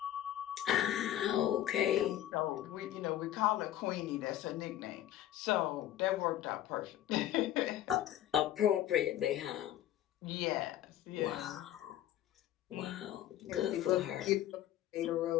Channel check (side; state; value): right; quieter; 12.4 dB